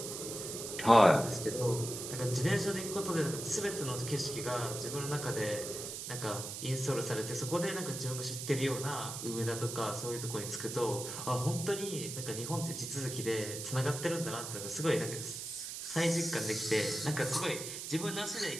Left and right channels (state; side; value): noise; right; hiss, 7 dB below the sound